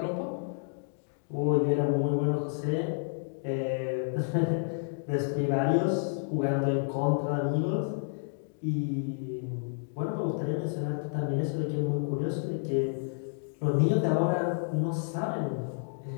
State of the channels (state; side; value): silent; right; digital silence